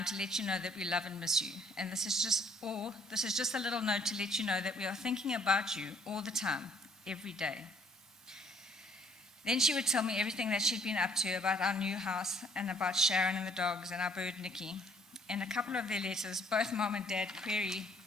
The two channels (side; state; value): both; normal; correlation 0.62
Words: to let you know that we love and miss you, and this is just a little note to let you know that we are thinking about you all the time, every day. Then she would tell me everything that she'd been up to about our new house and about Sharon and the dogs and our bird Nikki. In a couple of their letters, both Mom and Dad query